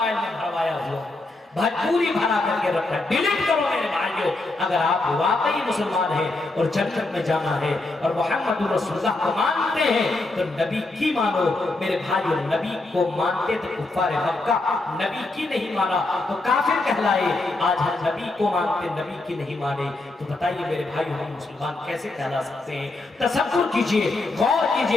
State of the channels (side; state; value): right; quieter; 3.0 dB